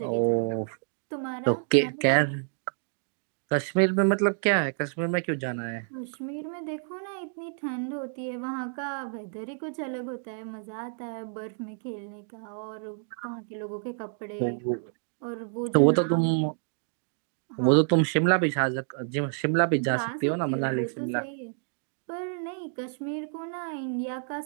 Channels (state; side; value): silent; left; digital silence